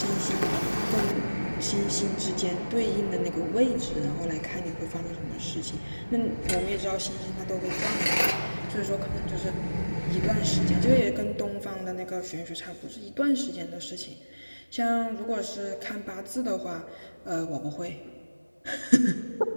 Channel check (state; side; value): inverted; both; correlation -1.00